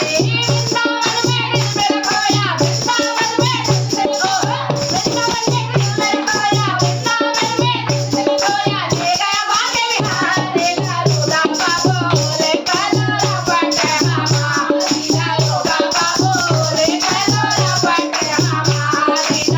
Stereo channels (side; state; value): both; identical; correlation 1.00